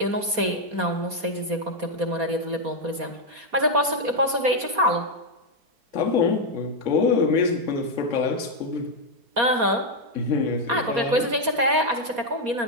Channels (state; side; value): late; left; 4.2 ms